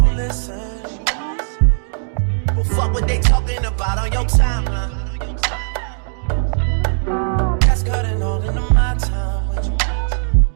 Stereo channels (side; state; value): left; silent; 64 dB below the other